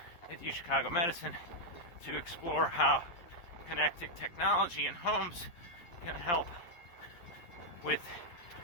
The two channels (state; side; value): late; right; 11 ms